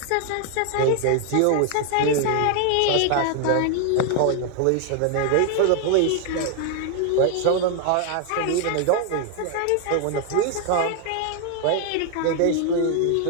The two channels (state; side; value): different; both; correlation 0.00